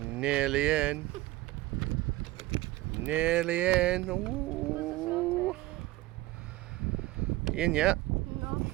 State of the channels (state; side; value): quieter; left; 18.0 dB